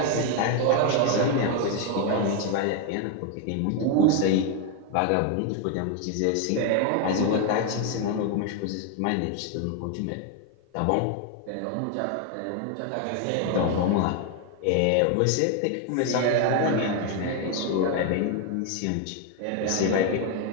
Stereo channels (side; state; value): both; different; correlation 0.01